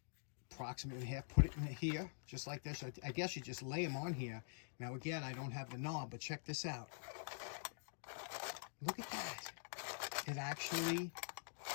approximately half, put it in here, just like this. I guess you just lay them on here. Now again, I don't have the knob, but check this out. Look at that. It actually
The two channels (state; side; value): silent; right; digital silence